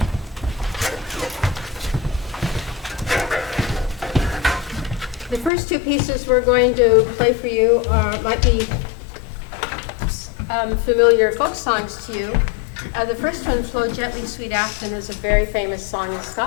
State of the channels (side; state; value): right; drops out; at 5.5 s